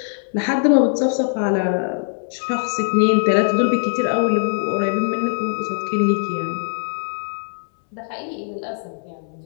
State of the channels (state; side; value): silent; right; digital silence